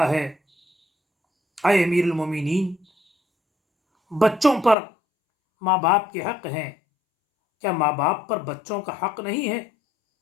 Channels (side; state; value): right; drops out; at 4.8 s